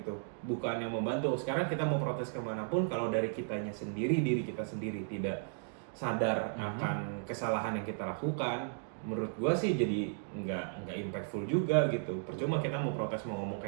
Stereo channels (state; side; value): silent; left; digital silence